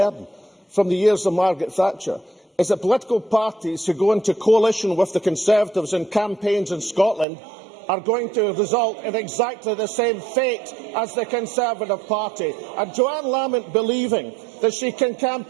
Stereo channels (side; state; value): left; drops out; at 7.2 s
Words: from the years of Margaret Thatcher is that political parties who go into coalition with the Conservatives in campaigns in Scotland are going to result in exactly the same fate as the Conservative Party. And Joanne Lamont believing that she can